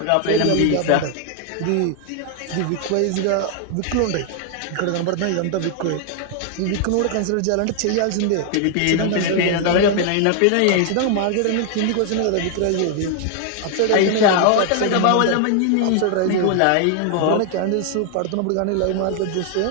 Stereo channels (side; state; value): both; different; correlation 0.00